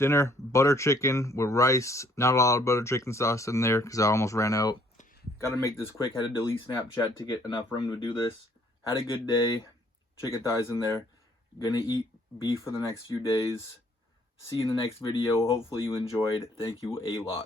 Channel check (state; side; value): normal; both; correlation 0.64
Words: butter chicken with rice. Not a lot of butter chicken sauce in there because I almost ran out. Gotta make this quick, had to delete Snapchat to get enough room to do this. Had a good day, chicken thighs in there. Gonna eat beef for the next few days. See you in the next video. Hopefully you enjoyed. Thank you a